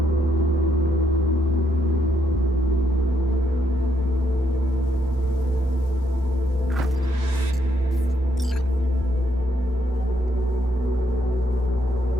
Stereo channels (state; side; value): normal; both; correlation 0.76